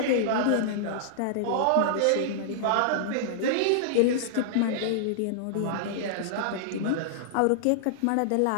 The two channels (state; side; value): different; both; correlation -0.01